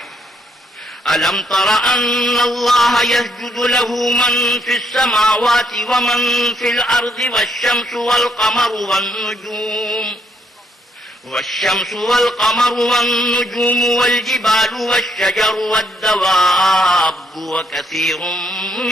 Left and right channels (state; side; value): normal; both; correlation 0.72